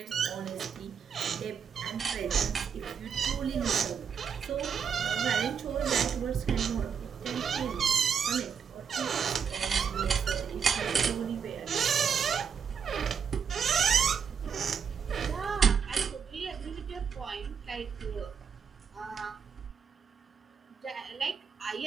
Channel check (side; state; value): left; quieter; 6.8 dB